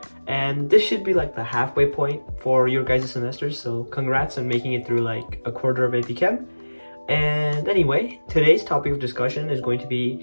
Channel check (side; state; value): both; inverted; correlation -1.00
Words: and this should be like the halfway point for your guys' semesters, so congrats on making it through like a quarter of AP Chem. And anyway, today's topic of discussion is going to be